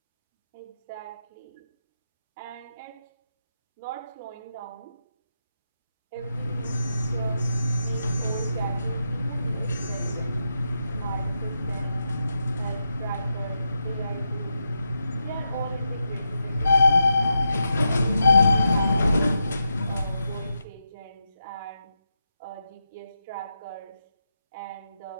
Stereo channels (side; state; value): both; inverted; correlation -0.86